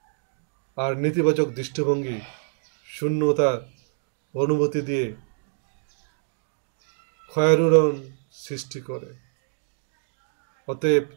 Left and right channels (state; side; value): silent; left; digital silence